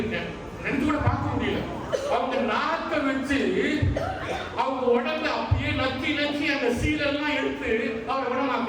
நினைச்சு கூட பார்க்க முடியல. அவங்க நாக்க வச்சு அவங்க உடம்புல அப்படியே நக்கி அந்த சீலெல்லாம் எடுத்து அவரை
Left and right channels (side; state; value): both; identical; correlation 1.00